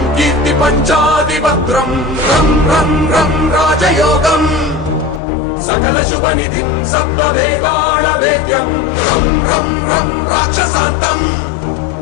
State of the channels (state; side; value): drops out; right; at 5.2 s